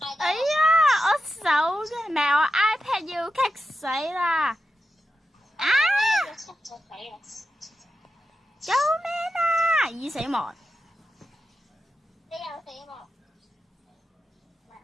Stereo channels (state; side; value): normal; both; correlation 0.90